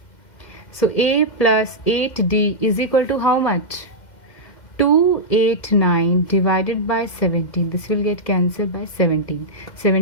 So a plus 8d is equal to how much? 289 divided by 17. This will get cancelled by 17.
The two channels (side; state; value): right; late; 2.1 ms